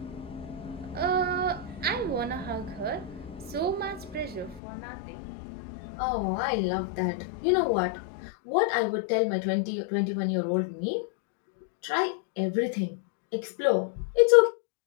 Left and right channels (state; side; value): drops out; right; at 4.6 s